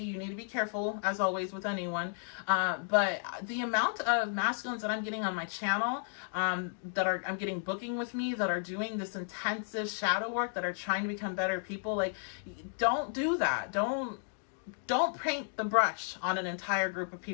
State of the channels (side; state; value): right; silent; 56 dB below the other